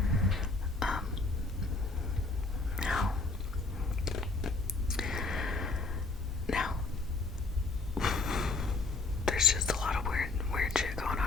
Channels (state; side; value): quieter; right; 3.5 dB